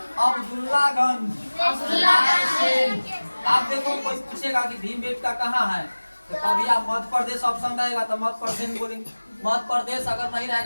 अब्दुल्लागंज। आप देखो कोई पूछेगा कि भीमबेटका कहाँ है, तो कभी आप मध्य प्रदेश ऑप्शन रहेगा तो मध्य प्रदेश बोलेंगे। मध्य प्रदेश अगर नहीं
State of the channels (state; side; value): inverted; both; correlation -1.00